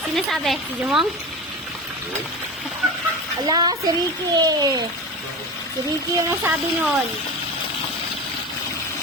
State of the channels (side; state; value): both; normal; correlation 0.28